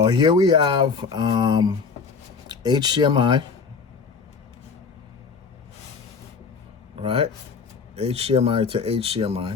here we have HDMI, right? HDMI to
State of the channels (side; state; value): right; quieter; 5.2 dB